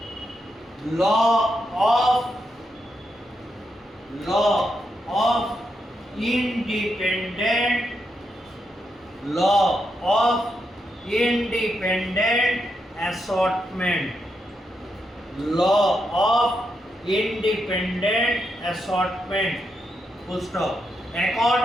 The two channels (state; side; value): normal; both; correlation 0.83